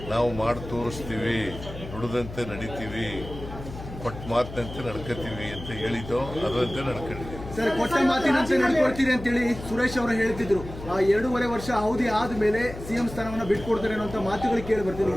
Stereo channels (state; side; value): noise; left; hum, 12 dB below the sound